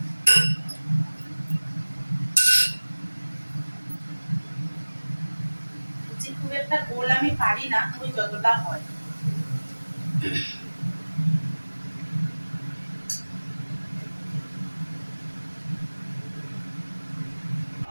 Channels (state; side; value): inverted; both; correlation -1.00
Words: খুব একটা গোল আমি পারি না, ওই যতটা হয়।